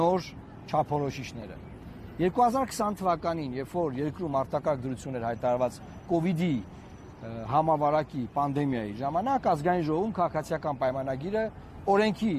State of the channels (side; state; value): both; identical; correlation 1.00